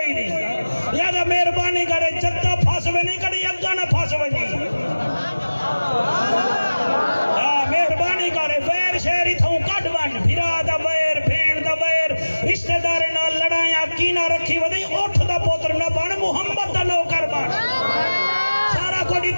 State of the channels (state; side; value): inverted; both; correlation -1.00